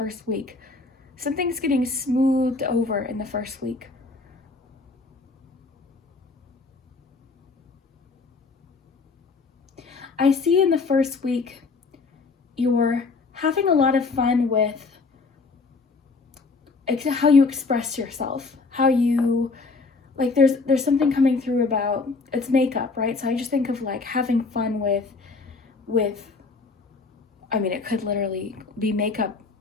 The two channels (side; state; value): right; quieter; 4.0 dB